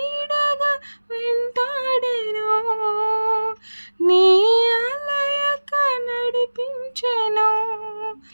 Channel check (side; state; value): both; inverted; correlation -1.00